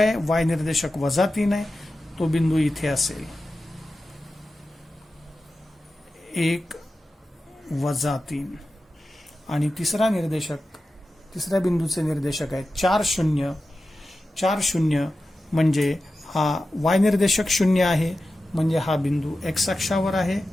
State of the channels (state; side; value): normal; both; correlation 0.93